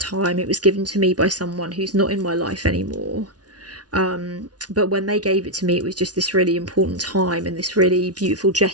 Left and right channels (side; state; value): left; late; 0.69 ms